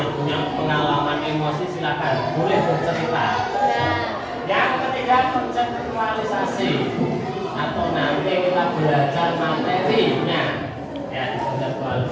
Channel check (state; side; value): identical; both; correlation 1.00